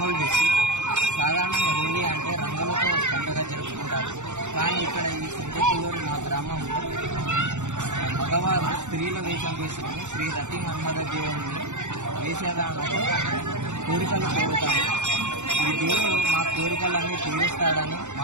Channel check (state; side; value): late; left; 0.84 ms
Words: డిస్ట్రిక్ట్. సాధారణంగా హోలీ అంటే రంగులతో పండుగ జరుపుకుంటారు. కానీ ఇక్కడ ఈ సెంటేకులూరు మా గ్రామంలో మగవారు స్త్రీల వేషం వేసుకుని శ్రీ రతి మన్మథ దేవుడిని వేసేదానితో కోరికలు కోరుతారు. ఈ దేవుడు మా కోరికలన్నీ తీరుస్తాడని,